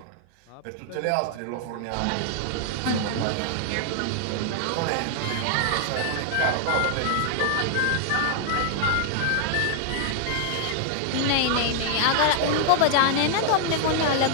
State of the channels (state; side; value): different; both; correlation 0.00